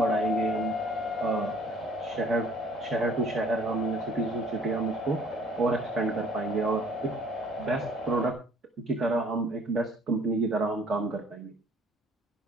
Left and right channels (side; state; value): both; normal; correlation 0.57